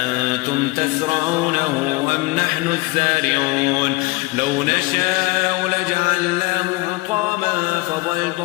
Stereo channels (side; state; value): right; quieter; 23.3 dB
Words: تزرعونه أم نحن الزارعون لو نشاء لجعلناه حطاما